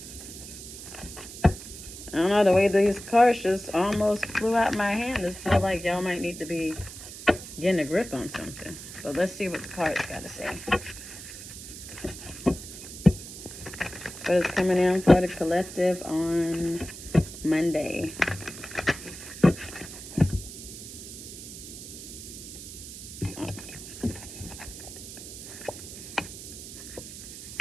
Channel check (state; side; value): noise; right; hiss, 12 dB below the sound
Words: I don't know, the way these cards just almost flew out my hand. I feel like y'all might need to be getting a grip on something. But let's see what the cards got to say. What is coming in for the collective on Monday?